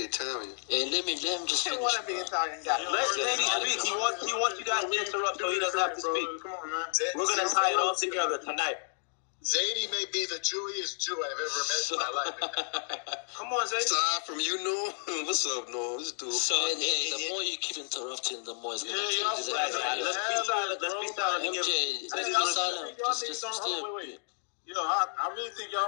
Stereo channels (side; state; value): right; silent; 57 dB below the other